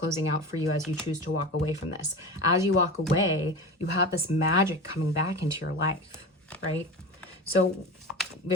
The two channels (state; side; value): normal; both; correlation 0.29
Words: out for you as you choose to walk away from this. As you walk away, you have this magic coming back into your life, right? So